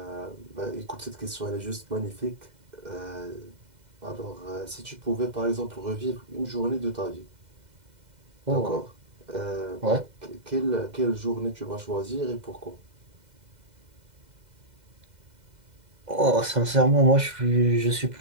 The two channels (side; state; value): left; late; 2.0 ms